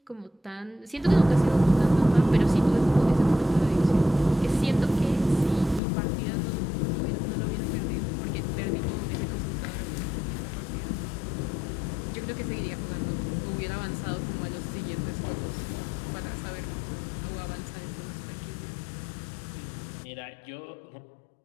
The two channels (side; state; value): right; drops out; at 5.8 s